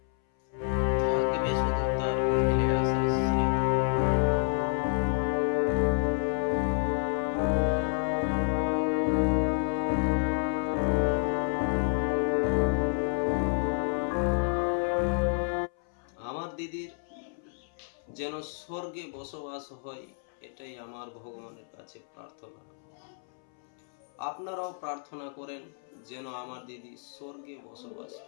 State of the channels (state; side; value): silent; right; 58 dB below the other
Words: থাকবে শুধু তার ফেলে আসা স্মৃতি। আমার দিদির যেন স্বর্গে বসবাস হয়, এটাই আমার ভগবানের কাছে প্রার্থনা। আপনারাও প্রার্থনা করেন যেন আমার দিদি স্বর্গে বসবাস